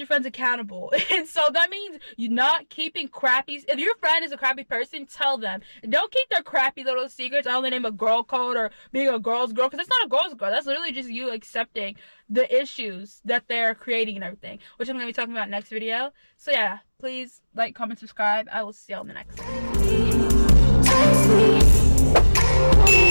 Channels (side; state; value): both; inverted; correlation -1.00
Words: friends accountable. And so that means you're not keeping crappy. If your friend is a crappy person, tell them. Don't keep their crappy little secrets under the name of girl code or being a girl's girl, because it's not a girl's girl. That's literally just you accepting the issues that they're creating and everything, which I'm going to be talking about next video. So yeah, please like, comment, subscribe. I will see y'all in the next one.